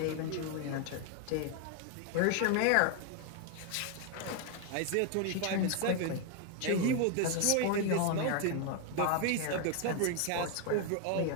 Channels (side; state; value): both; different; correlation 0.01